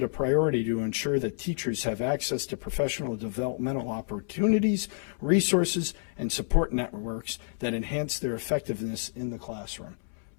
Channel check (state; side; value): silent; right; 58 dB below the other